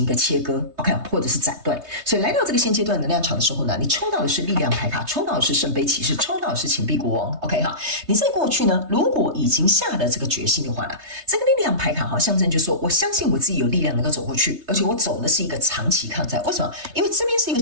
一個切割 ，OK， 或者是斬斷。所以來到這個現階段能量場的時候呢，你抽到的是力量牌卡，抽到的是聖杯騎士，抽到的是錢幣國王 ，OK 哈。你在過去呢，如果已經下了這個決心的話呢，這個力量牌卡象徵就是說，我相信我自己有力量能夠走過去，而且我走的是一個長期抗戰。為什麼？因為這邊是一個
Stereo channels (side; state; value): left; late; 3.2 ms